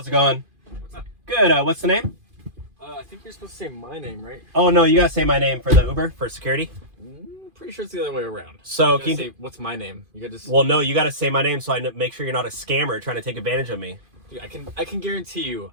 it going? What's up? Good, what's the name? I think you're supposed to say my name, right? Oh, no, you gotta say my name for the Uber, for security. Pretty sure it's the other way around. So, you can you say, what's my name? You gotta just... Well, no, you gotta say my name so I make sure you're not a scammer trying to take advantage of me. Dude, I can guarantee you,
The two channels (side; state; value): left; late; 2.5 ms